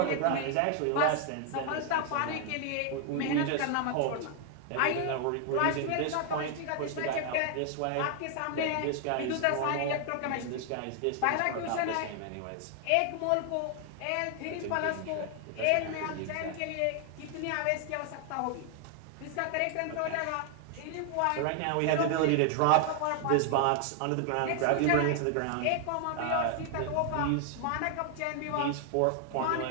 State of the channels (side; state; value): both; different; correlation 0.00